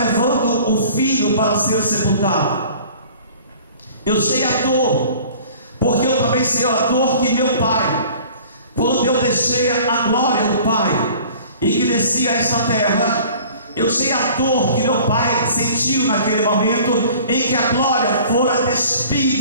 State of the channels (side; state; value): both; inverted; correlation -0.47